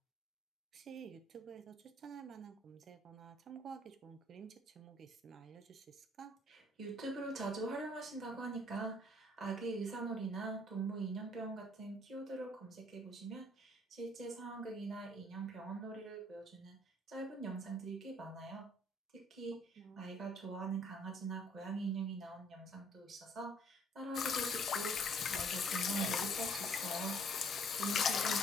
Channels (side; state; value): both; normal; correlation 0.61